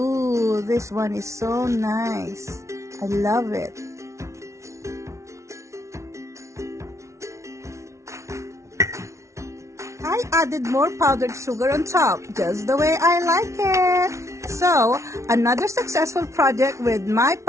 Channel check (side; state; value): left; late; 0.14 ms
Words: this one is so nice. I love it. I added more powdered sugar on top, just the way I like it. So, another successful project with my